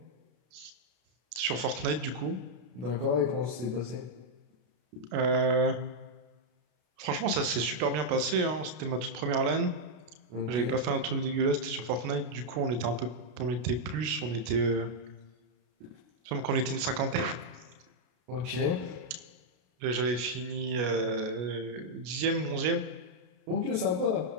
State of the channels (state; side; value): late; left; 33 ms